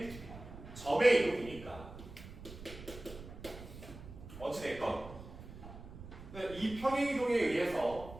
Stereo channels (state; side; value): noise; right; rumble, 14 dB below the sound